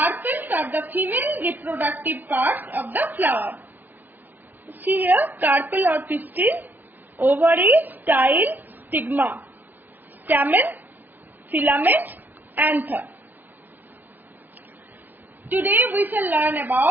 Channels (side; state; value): left; late; 0.085 ms